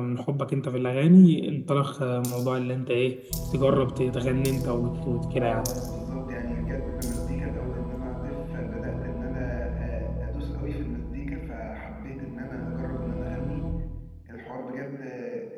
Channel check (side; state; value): both; identical; correlation 1.00